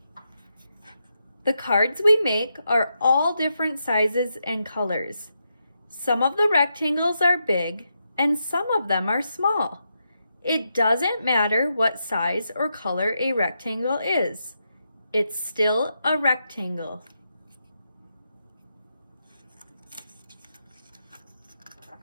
The cards we make are all different sizes and colors. Some of the rectangles are big and some of them are small. It doesn't matter what size or color a rectangle is. It's still a rectangle.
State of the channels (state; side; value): inverted; both; correlation -0.84